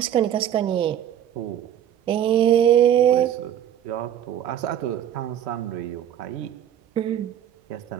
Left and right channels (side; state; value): left; quieter; 10.4 dB